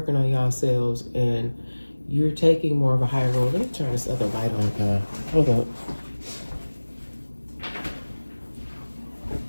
on yourselves, and you're taking more of a higher role. Let me turn this other light on. Hold up.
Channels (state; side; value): inverted; both; correlation -1.00